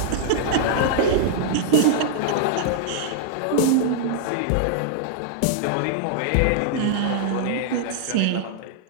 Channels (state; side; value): different; both; correlation -0.01